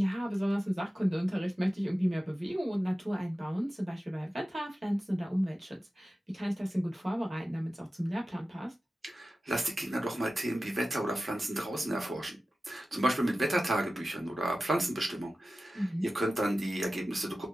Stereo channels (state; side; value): normal; both; correlation 0.95